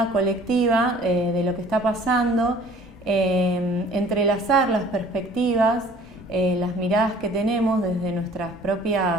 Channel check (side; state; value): both; normal; correlation 0.51